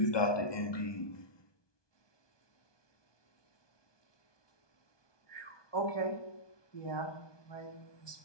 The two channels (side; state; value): right; late; 1.2 ms